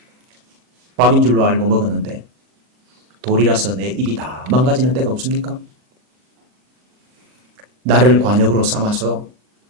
밥인 줄로 알고 먹었는데 돌이라서 내 입이 다 망가지는 때가 없습니까? 나를 관역으로 삼아서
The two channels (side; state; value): left; late; 40 ms